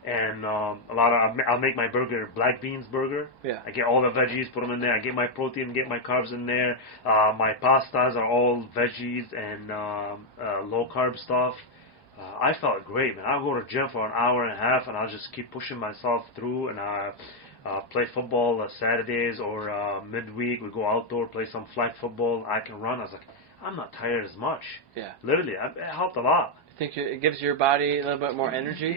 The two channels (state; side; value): late; right; 1.1 ms